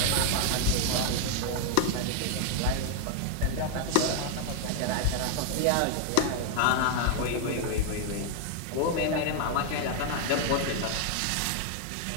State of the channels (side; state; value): both; different; correlation 0.00